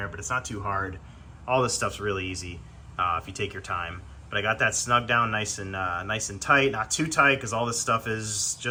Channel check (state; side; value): identical; both; correlation 1.00